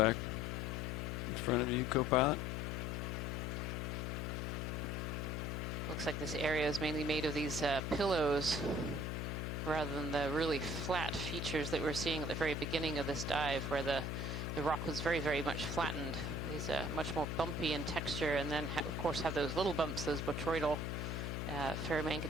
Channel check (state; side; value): noise; left; hum, 2 dB below the sound